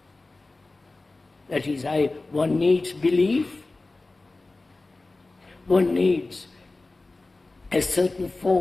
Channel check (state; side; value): quieter; right; 3.2 dB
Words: That is, one needs belief, one needs a certain